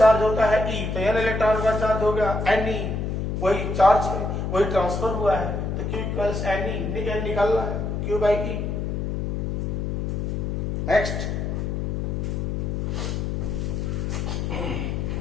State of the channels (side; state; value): left; noise; hum, 1 dB below the sound